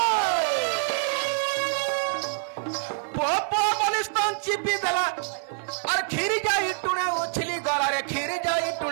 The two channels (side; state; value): left; silent; 61 dB below the other